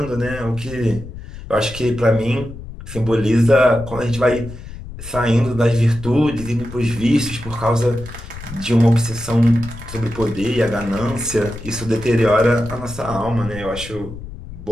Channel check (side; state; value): left; noise; rumble, 13 dB below the sound